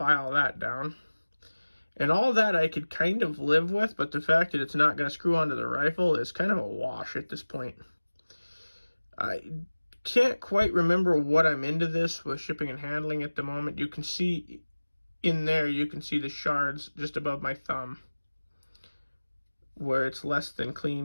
that down. And all that I could kind of live with, but the fact that it's not gonna screw onto the rifle is kind of a wash at this point. I can't quite remember what I'm into this with shipping and handling at the moment. You can see in there, you can see the shards just above my thumb, where it's less than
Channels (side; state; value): both; inverted; correlation -1.00